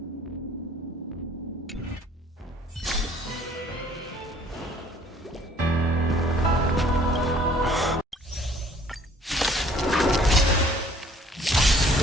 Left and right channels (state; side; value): normal; both; correlation 0.57